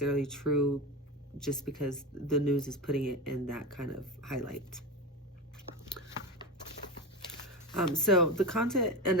true just because the news is putting it in that kind of highlight. So the content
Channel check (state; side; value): normal; both; correlation 0.21